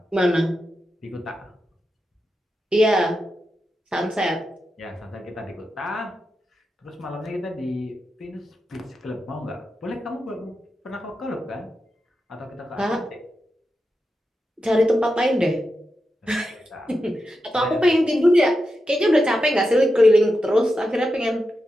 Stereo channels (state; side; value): normal; both; correlation 0.89